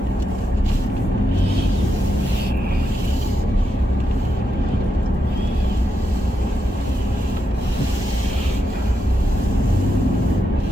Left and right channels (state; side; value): normal; both; correlation 0.84